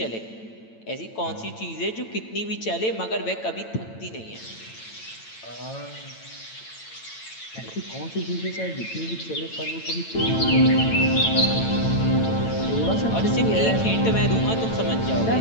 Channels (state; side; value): late; right; 9.0 ms